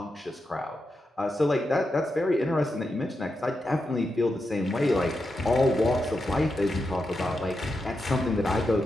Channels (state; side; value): normal; both; correlation 0.87